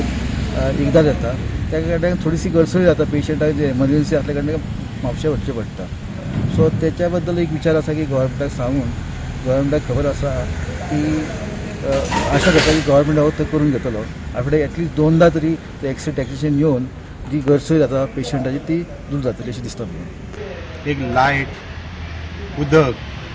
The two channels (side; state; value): both; identical; correlation 1.00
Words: एकदां येता। त्या कारणान थोडीशी गरसोय जाता पेशंटाक जे एमर्जन्सी आसल्या कारणान म्हापशें वचचें पडटा। सो त्याच्या बद्दल एक विचार आसा की गोव्हर्मेंटाक सांगून गोव्हर्मेंटाक खबर आसा की आशा करता की गोव्हर्मेंट हो ते करून घेतलो। आठवड्याक एटलीस्ट 2दा तरी ते एक्सरे टेक्निशियन येवन जी गरसोय जाता पेशंटाची ती दूर जातली अशें दिसता म्हाका। एक लायट, उदक,